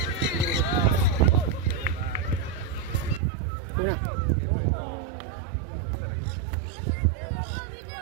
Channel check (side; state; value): left; drops out; at 3.2 s